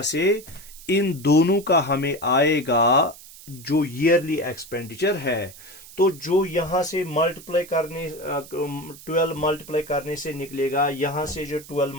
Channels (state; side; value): noise; right; hiss, 18 dB below the sound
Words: से इन दोनों का हमें आएगा जो ईयरली एक्सपेंडिचर है। तो जो यहां से मल्टीप्लाई करने 12 मल्टीप्लाई करने से निकलेगा, यहां से जो 12